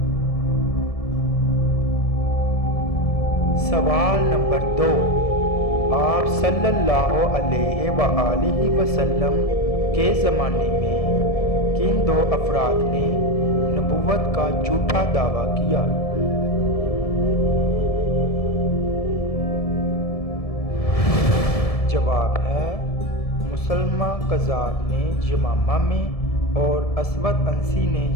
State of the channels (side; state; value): right; late; 1.7 ms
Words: سوال نمبر 2، آپ صلی اللہ علیہ وآلہ وسلم کے زمانے میں کن 2 افراد نے نبوت کا جھوٹا دعویٰ کیا؟ جواب ہے مسلمہ کذاب نے یمامہ میں اور اسود انسی نے